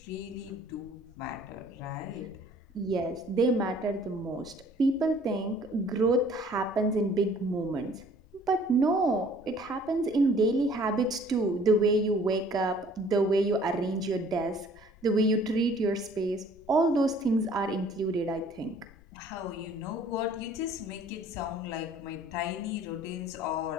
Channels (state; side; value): noise; left; rumble, 24 dB below the sound